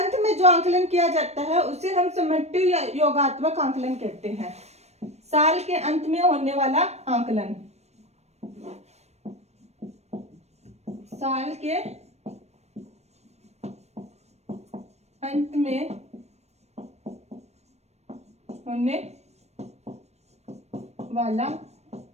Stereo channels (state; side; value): late; left; 0.31 ms